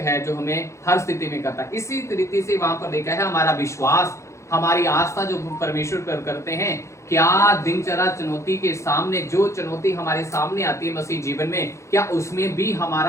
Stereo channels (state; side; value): late; right; 0.14 ms